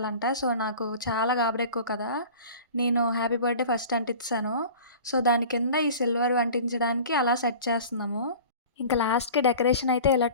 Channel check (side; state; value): both; inverted; correlation -0.41